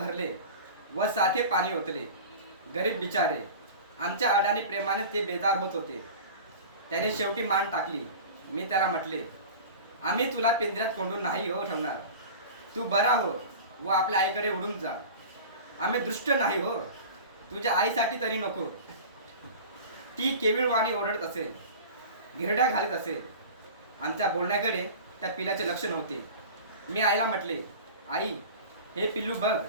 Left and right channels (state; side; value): inverted; both; correlation -0.36